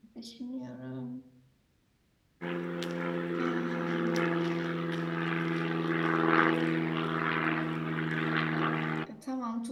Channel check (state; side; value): identical; both; correlation 1.00